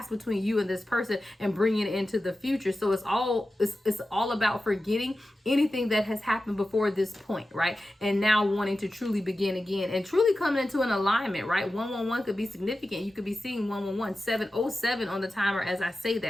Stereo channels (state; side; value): normal; both; correlation 0.93